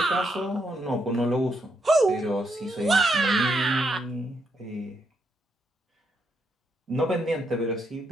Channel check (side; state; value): both; normal; correlation 0.78